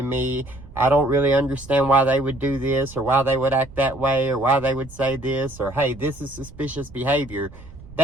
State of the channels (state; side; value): noise; right; rumble, 18 dB below the sound